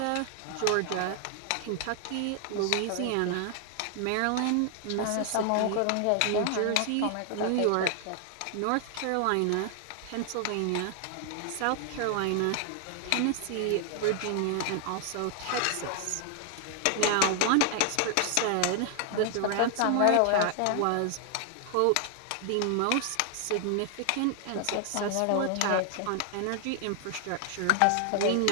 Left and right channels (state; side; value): different; both; correlation 0.00